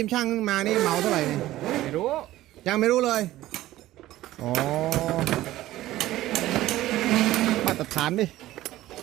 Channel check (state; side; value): quieter; left; 15.5 dB